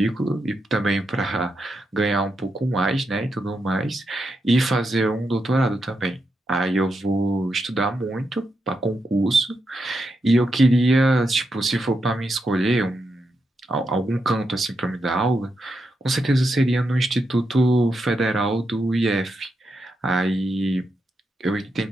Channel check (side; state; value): both; normal; correlation 0.84